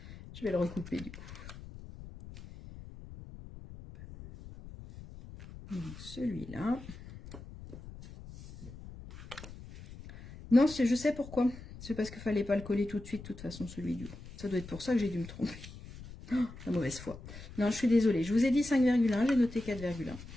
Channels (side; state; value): left; noise; rumble, 15 dB below the sound